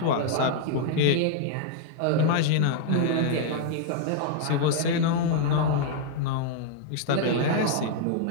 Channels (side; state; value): both; different; correlation -0.01